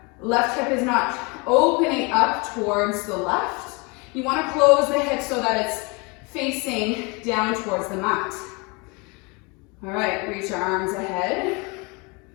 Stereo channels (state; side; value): quieter; right; 29.2 dB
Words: left hip is not opening up towards the left. You want to close the hips so that it's facing down towards the mat. All right, reach your arms ahead.